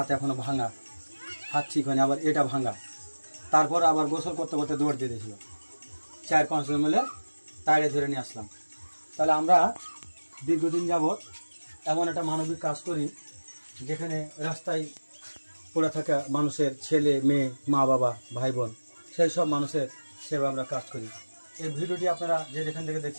এখনও ভাঙা হাত ঠিক হয়নি আবার এটা ভাঙা তারপর আবার গোসল করতে করতে দৌড় দিয়ে দিয়েছিল 4-5 জন মিলে তাড়ে ধরে নিয়ে আসলাম তাহলে আমরা দীর্ঘদিন যাবৎ এমন একটা মানবিক কাজ করি যেখানে রাস্তায় পড়ে থাকা মানুষের ছেলে মেয়ে মা বাবা ভাই বোন সেই সব মানুষের সেবা আমরা কাজ করি এই ভিডিওটি আপনারা যে যেখান থেকে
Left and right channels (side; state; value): both; inverted; correlation -1.00